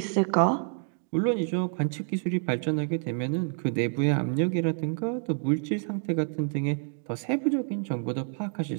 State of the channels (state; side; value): silent; left; 59 dB below the other